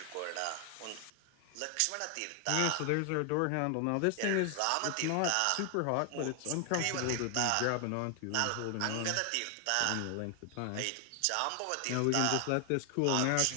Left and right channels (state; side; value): different; both; correlation 0.00